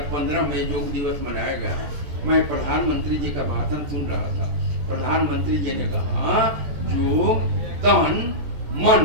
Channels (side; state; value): left; late; 14 ms